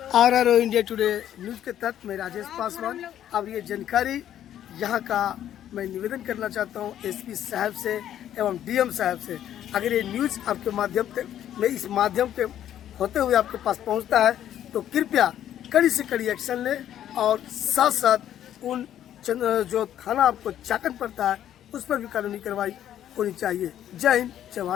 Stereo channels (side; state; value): right; quieter; 11.1 dB